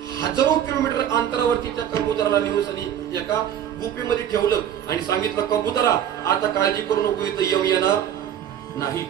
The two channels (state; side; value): quieter; left; 10.1 dB